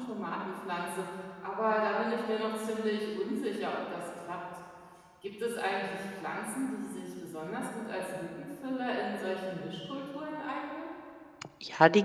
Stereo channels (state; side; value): identical; both; correlation 1.00